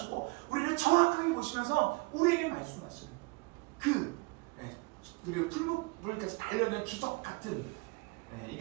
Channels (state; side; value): quieter; left; 26.8 dB